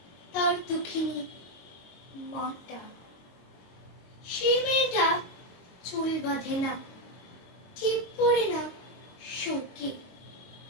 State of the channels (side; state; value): right; late; 22 ms